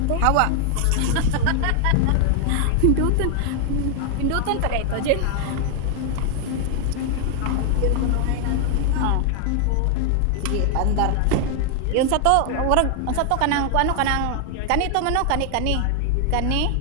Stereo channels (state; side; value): different; both; correlation 0.00